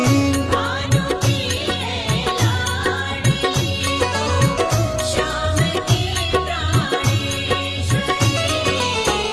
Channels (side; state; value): both; identical; correlation 1.00